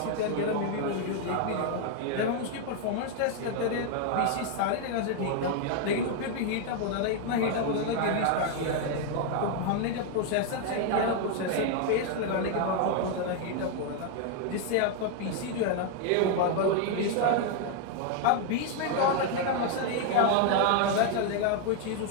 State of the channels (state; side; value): different; both; correlation 0.00